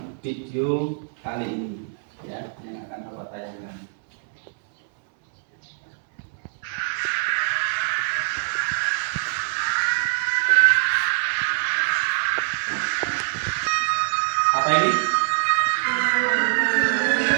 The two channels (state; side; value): silent; left; 63 dB below the other